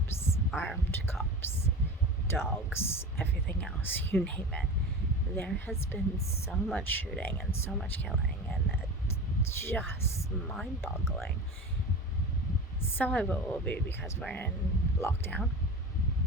armed cops, dogs, everything else, you name it. There has been so much shooting and so much killing, and it's just mind-boggling. Some of it will be because we're in lockdown.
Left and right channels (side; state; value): both; normal; correlation 0.31